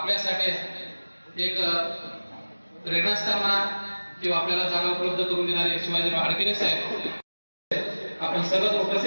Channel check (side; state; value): both; inverted; correlation -1.00